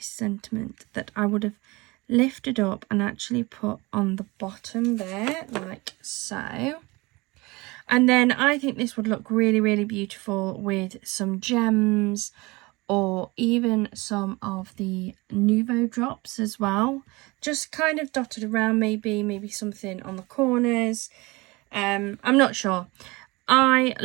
sentiment that I would have lifted up and actually put on the bottom there, like so. And then I think this would look really, really beautiful with some gems or even some of the Nuvo drops as well. Just kind of dotted around, maybe something on the corners. I'm not sure. I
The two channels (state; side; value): quieter; left; 23.7 dB